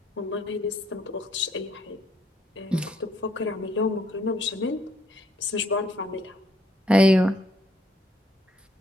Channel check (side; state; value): both; normal; correlation 0.69